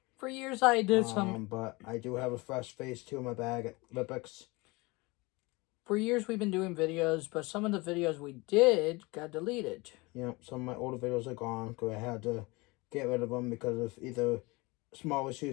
For years I did some... But I do have a fresh Phase 2 in my bag at Lipix. For years we've been doing videos, but some of the videos we did got deleted. Yep, some of my older videos are gone because I had to get rid of them because of either small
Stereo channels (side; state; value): right; quieter; 24.5 dB